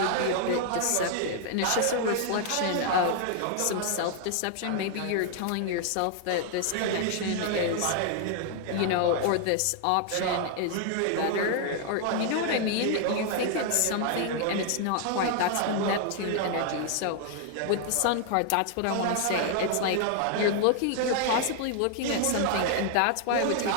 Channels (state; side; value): different; both; correlation 0.00